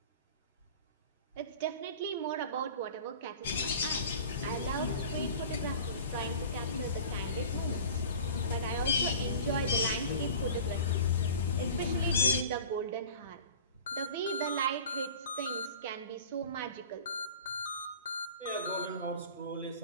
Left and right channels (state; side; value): inverted; both; correlation -0.40